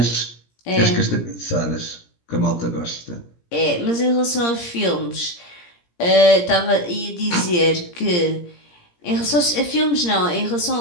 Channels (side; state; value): right; late; 17 ms